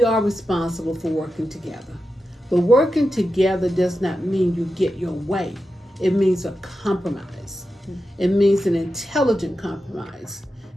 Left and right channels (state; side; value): normal; both; correlation 0.90